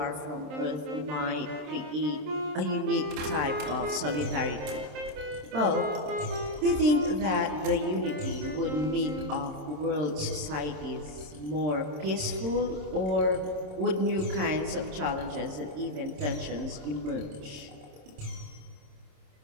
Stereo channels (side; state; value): left; late; 27 ms